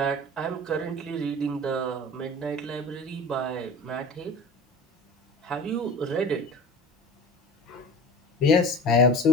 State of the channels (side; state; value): both; normal; correlation 0.38